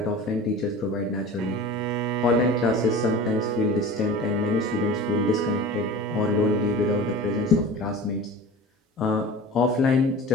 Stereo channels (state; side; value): normal; both; correlation 0.36